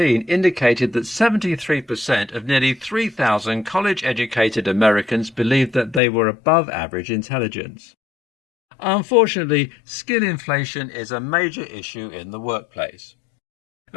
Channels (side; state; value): right; drops out; at 6.0 s